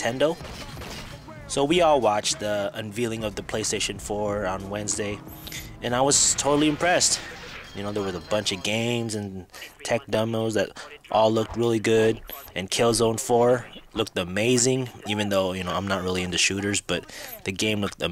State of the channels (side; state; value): both; identical; correlation 1.00